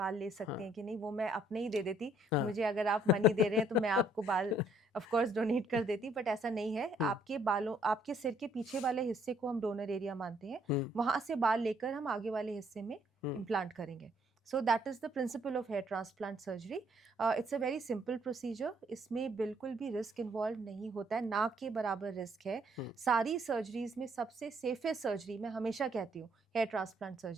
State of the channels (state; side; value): normal; both; correlation 0.66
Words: ले हाँ, सकते हैं कि नहीं, वो मैं अपने ही दे देती। हाँ। मुझे अगर आप मनी दे रहे हैं तो मैं आपको बाल ऑफ कोर्स डोनेट कर देती, बट ऐसा नहीं है। हुँ, आपके बालों, आपके सिर के पीछे वाले हिस्से को हम डोनर एरिया मानते हैं, हुँ, वहाँ से बाल लेकर हम आगे वाले हिस्से में हुँ, इम्प्लांट करेंगे। So that is the principle of hair transplant surgery. It's a very simple procedure. इसमें बिल्कुल भी रिस्क इन्वॉल्व नहीं होता है, ना के बराबर रिस्क है। हुँ, सारी सर्जरीज़ में सबसे सेफेस्ट सर्जरी, मैं हमेशा कहती हूँ, हेयर ट्रांसप्लांट